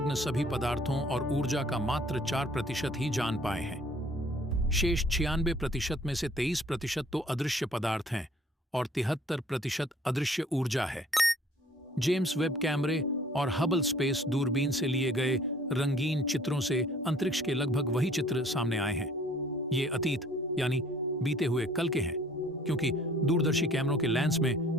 सभी पदार्थों और ऊर्जा का मात्र 4% ही जान पाए हैं। शेष 96% में से 23% तो अदृश्य पदार्थ हैं और 73% अदृश्य ऊर्जा है। जेम्स वेब कैमरे और हबल स्पेस दूरबीन से लिए गए रंगीन चित्रों से अंतरिक्ष के लगभग वही चित्र सामने आए हैं। ये अतीत यानी बीते हुए कल के हैं, क्योंकि दूरदर्शी कैमरों के लेंस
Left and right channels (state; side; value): normal; both; correlation 0.56